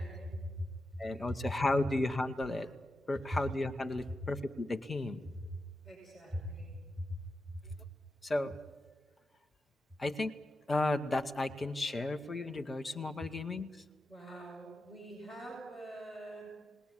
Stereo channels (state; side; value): normal; both; correlation 0.89